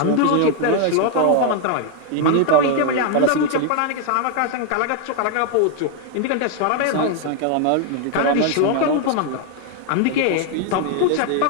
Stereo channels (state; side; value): different; both; correlation 0.00